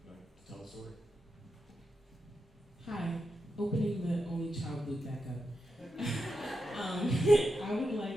tell the story. Hi, opening the only child loop back up. I would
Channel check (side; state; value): both; normal; correlation 0.87